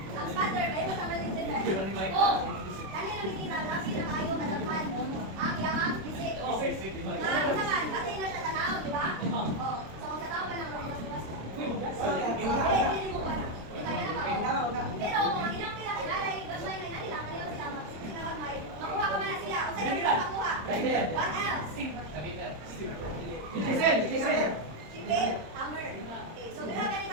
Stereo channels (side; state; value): left; late; 26 ms